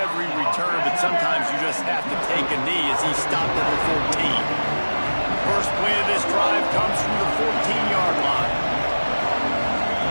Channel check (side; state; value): both; inverted; correlation -1.00